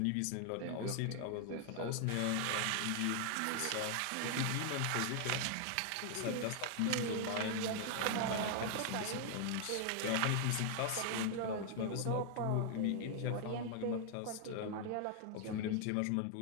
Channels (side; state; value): both; different; correlation 0.00